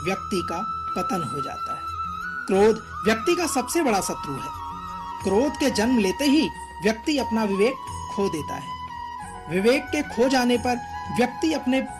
व्यक्ति का पतन हो जाता है। क्रोध व्यक्ति का सबसे बड़ा शत्रु है। क्रोध के जन्म लेते ही व्यक्ति अपना विवेक खो देता है। विवेक के खो जाने पर व्यक्ति अपने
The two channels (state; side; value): identical; both; correlation 1.00